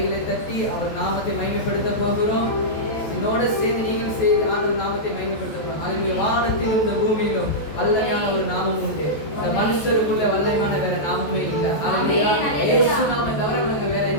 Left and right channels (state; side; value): late; right; 14 ms